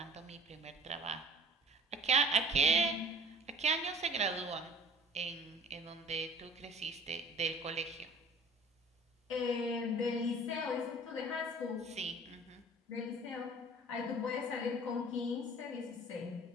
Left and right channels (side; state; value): both; normal; correlation 0.47